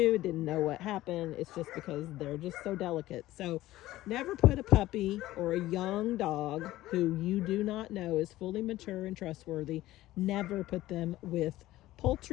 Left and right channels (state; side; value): quieter; right; 16.0 dB